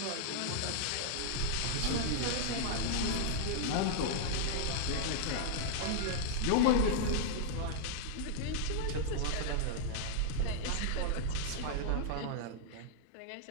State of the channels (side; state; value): both; different; correlation -0.01